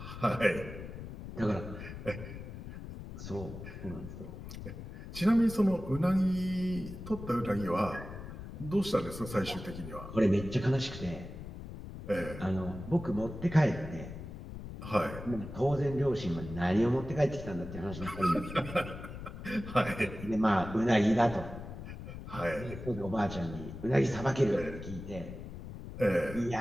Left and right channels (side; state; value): left; noise; rumble, 11 dB below the sound